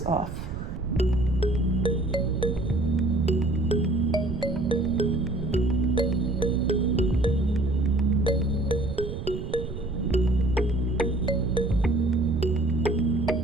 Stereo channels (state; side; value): noise; right; rumble, 7 dB below the sound